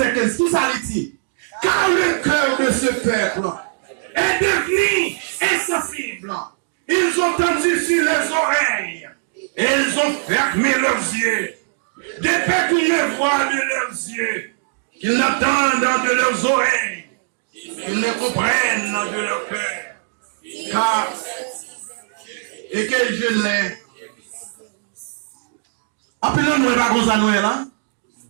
15. Qui ça dit? Car le cœur de ce peuple est devenu insensible. Ils ont tendu sur les oreilles. Et ils ont fermé leurs yeux. De peur qu'ils ne voient de leurs yeux. Qu'ils n'entendent de leurs oreilles. Qu'ils ne comprennent de leur cœur. Car, et que je l'ai. Appelons-nous pas comme ça, nous là.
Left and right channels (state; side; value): silent; left; digital silence